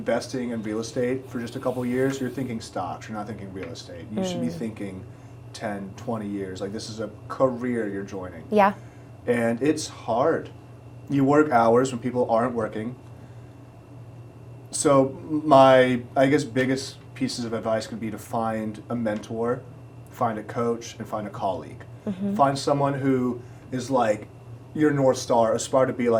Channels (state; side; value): identical; both; correlation 1.00